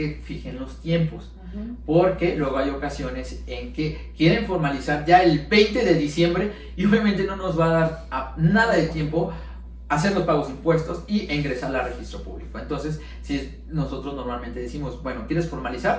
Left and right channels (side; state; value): both; identical; correlation 1.00